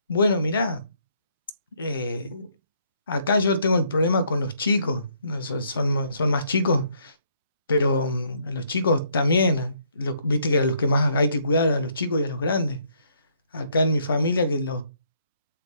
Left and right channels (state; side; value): inverted; both; correlation -0.69